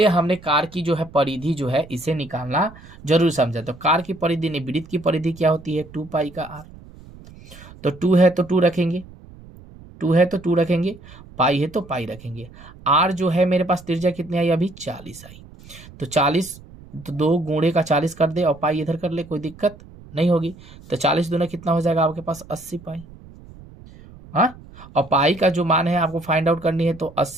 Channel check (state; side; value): noise; right; rumble, 20 dB below the sound